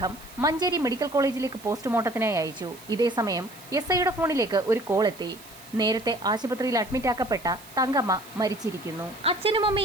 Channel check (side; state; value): right; noise; hiss, 20 dB below the sound